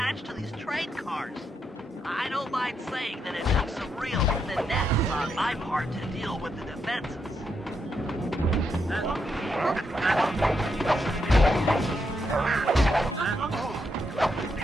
to these train cars. I don't mind saying that it took some real finesse on my part to deal with the defenses.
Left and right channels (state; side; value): normal; both; correlation 0.80